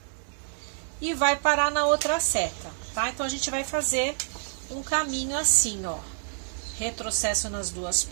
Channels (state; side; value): silent; left; digital silence